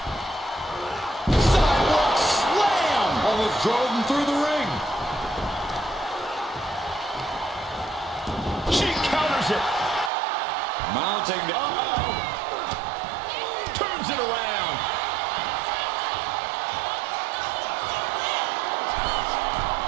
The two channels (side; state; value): left; drops out; at 10.1 s